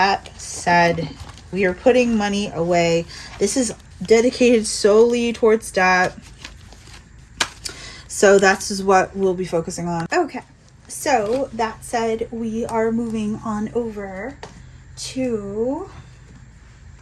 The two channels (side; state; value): both; identical; correlation 1.00